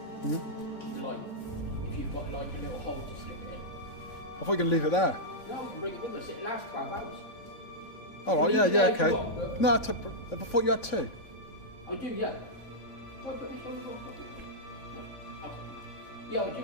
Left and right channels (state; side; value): late; right; 3.5 ms